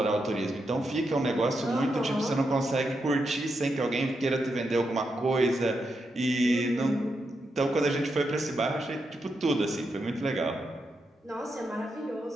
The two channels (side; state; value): both; normal; correlation 0.84